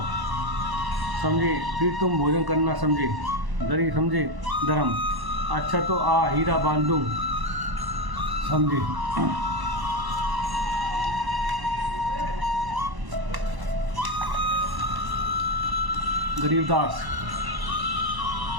समझे। फिर तुम भोजन करना, समझे। गरीब, समझे। धर्म अच्छा तो आ हीरा बांध दूँ, समझे। गरीबदास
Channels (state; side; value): late; left; 1.0 ms